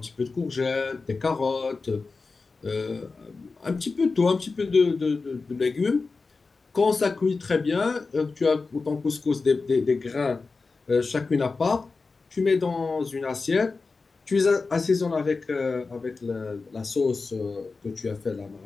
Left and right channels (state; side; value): quieter; right; 4.1 dB